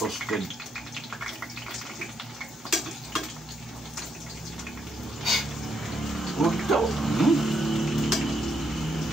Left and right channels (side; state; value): both; normal; correlation 0.77